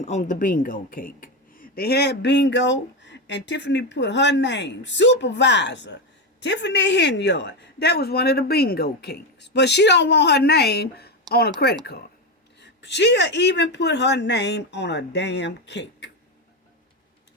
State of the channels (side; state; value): both; normal; correlation 0.12